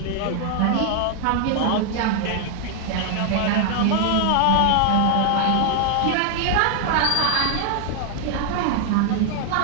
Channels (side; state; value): both; different; correlation 0.00